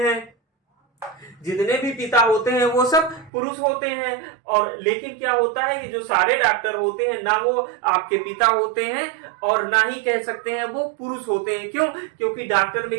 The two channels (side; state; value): left; drops out; at 3.3 s